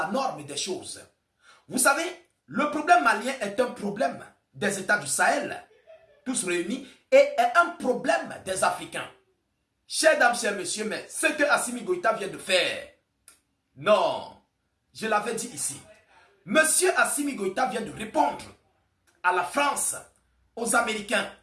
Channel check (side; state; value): both; identical; correlation 1.00